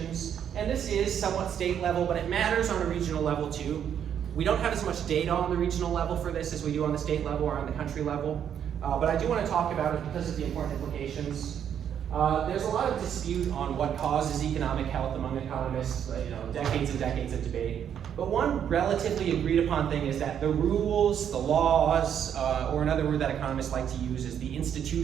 And this is somewhat state level, but it matters on a regional level too. We don't have as much data on the regional level for this as we do on the state level or on the country level. But I do want to talk about it because of the important implications. There's a lot of dispute on what causes economic health among economists, decades and decades of debate. But one relatively agreed upon thing is that the rules, the laws, or another word that economists like to use is the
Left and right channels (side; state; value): left; quieter; 8.9 dB